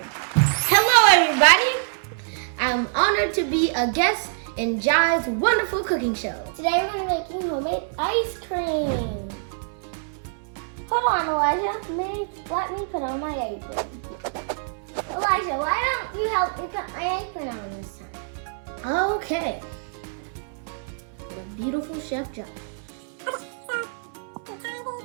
Hello everybody! I'm honored to be a guest in Jai's wonderful cooking show. Today we're making homemade ice cream. Hold on, Elijah. Let me put on my apron. Elijah, why don't you help me put my apron on this time? Okay. The beautiful Chef Jai.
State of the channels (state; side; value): silent; left; 60 dB below the other